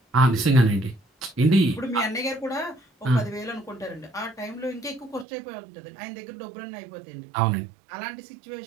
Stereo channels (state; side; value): drops out; left; at 5.2 s